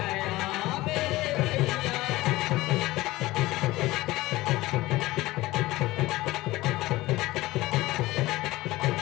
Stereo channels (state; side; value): quieter; right; 18.6 dB